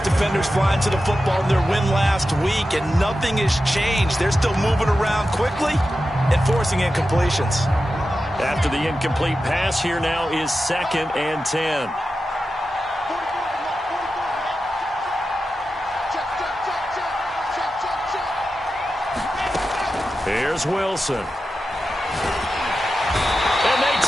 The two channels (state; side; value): normal; both; correlation 0.91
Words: defenders flying to the football in their win last week, and nothing has changed. They're still moving around quickly and forcing incompletions. After the incomplete pass, here now is 2nd and 10. Here's Wilson. And they